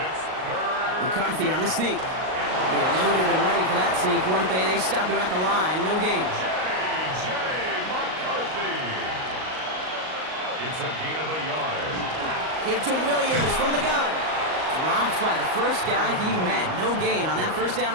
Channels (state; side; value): late; left; 38 ms